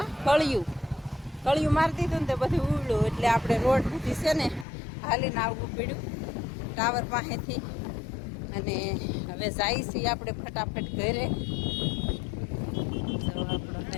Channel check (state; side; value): drops out; right; at 4.7 s